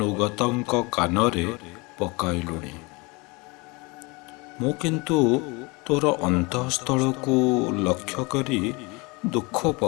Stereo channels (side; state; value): right; quieter; 26.8 dB